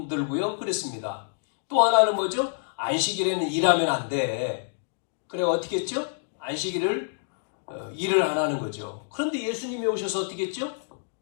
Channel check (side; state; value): right; silent; digital silence